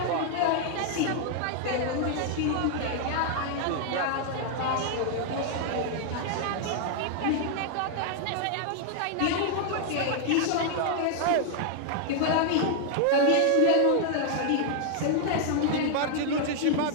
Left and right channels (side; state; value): both; different; correlation 0.00